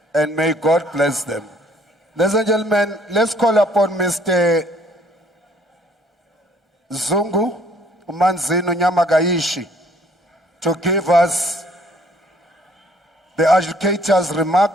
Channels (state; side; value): normal; both; correlation 0.61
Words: And may God bless them. Ladies and gentlemen, let's call upon Mr. Zungu Manzino Nyamagaishi to give us the educators'